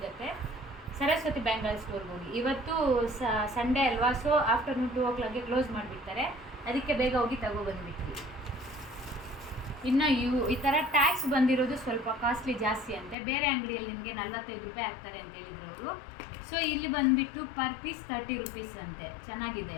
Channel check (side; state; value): right; drops out; at 13.2 s